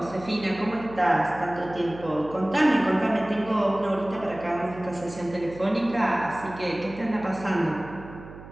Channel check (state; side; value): noise; right; hum, 16 dB below the sound